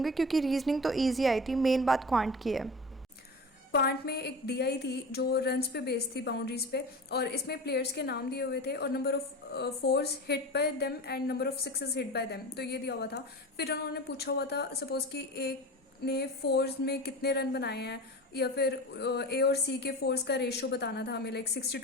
क्योंकि रीजनिंग तो ईजी आई थी, मेन बात क्वांट की है। क्वांट में एक डीआई थी जो रन्स पे बेस्ड थी, बाउंड्रीज पे, और इसमें प्लेयर्स के नाम दिए हुए थे और number of force hit by them and number of sixes hit by them, तो ये दिया हुआ था। फिर उन्होंने पूछा हुआ था सपोज कि एक ने फोर्स में कितने रन बनाए हैं, या फिर ए और सी के फोर्स का रेशियो बताना था हमें। लाइक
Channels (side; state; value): both; normal; correlation 0.31